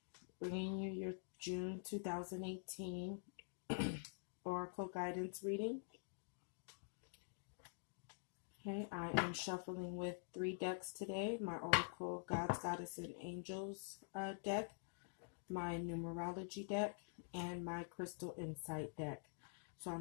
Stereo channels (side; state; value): right; silent; digital silence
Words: bringing you your June 2018 Oracle Guidance reading. Okay, I am shuffling with 3 decks today. My Oracle Gods, Goddess, and Angels deck, my Numerology deck, and my Crystal Insight deck. So